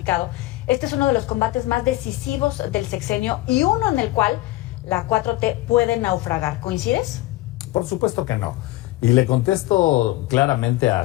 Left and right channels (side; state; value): right; quieter; 17.6 dB